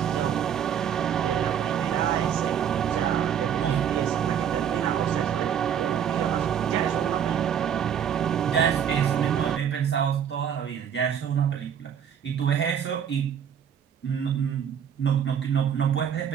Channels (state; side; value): quieter; left; 8.6 dB